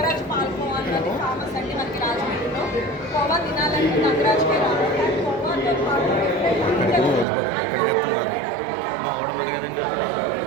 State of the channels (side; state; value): left; drops out; at 7.2 s